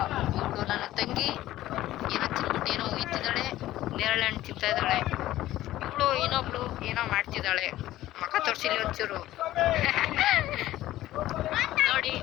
ನನ್ನ ತಂಗಿ ಏನೋ ಇತ್ತಿದ್ದಾಳೆ, ನೇರಳೆ ಹಣ್ಣು ತಿಂತಾ ಇದ್ದಾಳೆ. ಇವಳು ಇನ್ನೊಬ್ಳು ಏನೋ ಮಾಡ್ತಿದ್ದಾಳೆ. ಮಕ್ಕ ತೋರಿಸಿಲಿ ಒಂಚೂರು. ನೋಡಿ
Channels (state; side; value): quieter; right; 14.9 dB